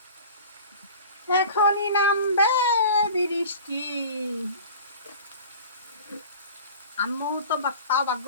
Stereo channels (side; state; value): both; inverted; correlation -0.40